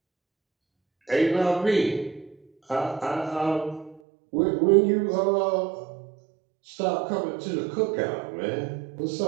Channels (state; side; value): drops out; left; at 4.0 s